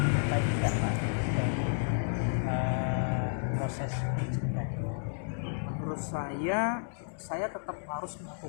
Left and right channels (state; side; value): silent; right; digital silence